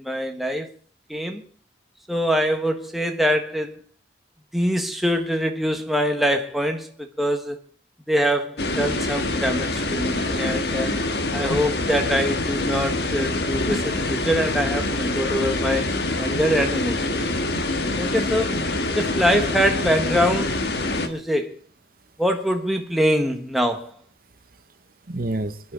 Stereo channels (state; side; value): normal; both; correlation 0.65